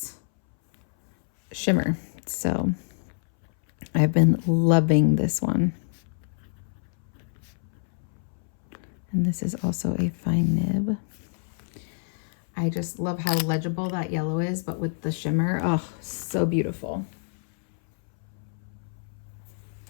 shimmer. So I've been loving this one. And this is also a fine nib. I just love how legible that yellow is, but with the shimmer, oh, so beautiful.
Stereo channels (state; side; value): silent; right; 60 dB below the other